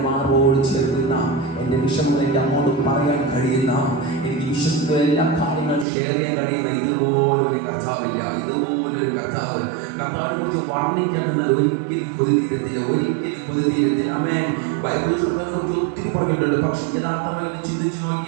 മാറോട് ചേർക്കുന്ന, എൻ്റെ വിഷമങ്ങൾ എൻ്റെ അങ്ങോട്ട് പറയാൻ കഴിയുന്ന, എനിക്ക് വിശ്വസിക്കുന്ന എല്ലാ കാര്യങ്ങളും ഷെയർ ചെയ്യാൻ കഴിയുന്ന ഇതുപോലൊരു കർത്താവില്ല. ഇതുപോലൊരു കർത്താവിനെ കുറിച്ച് വർണ്ണിക്കാൻ നിന്നാൽ ഒരിക്കലും കൊതിതീരത്തില്ല. ആമേൻ. ബൈബിളിൽ കർത്താവിനെ കുറിച്ച് ഒത്തിരി പറഞ്ഞിട്ടുണ്ട്. പക്ഷെ യഥാർത്ഥമായി ചിന്തിച്ച്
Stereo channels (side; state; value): left; drops out; at 5.9 s